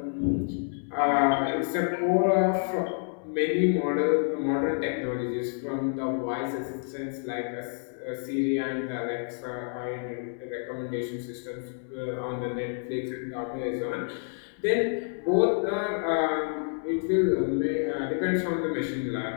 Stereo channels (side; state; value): right; silent; 59 dB below the other